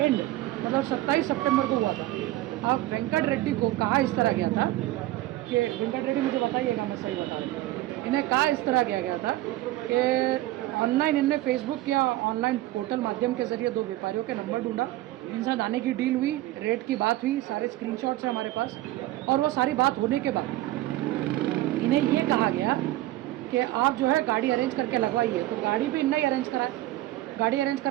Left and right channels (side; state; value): left; quieter; 16.4 dB